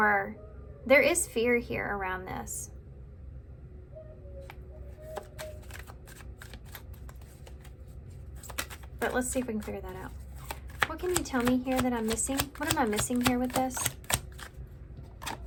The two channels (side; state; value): both; identical; correlation 1.00